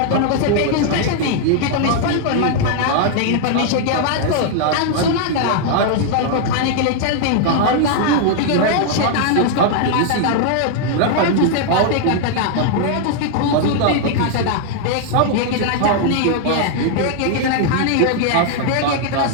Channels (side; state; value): both; different; correlation 0.00